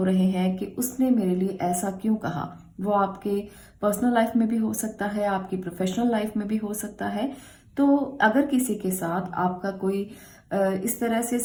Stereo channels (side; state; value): both; identical; correlation 1.00